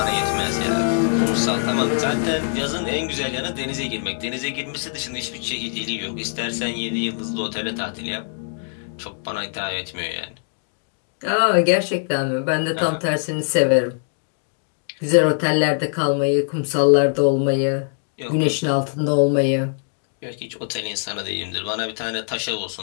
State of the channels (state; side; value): silent; right; digital silence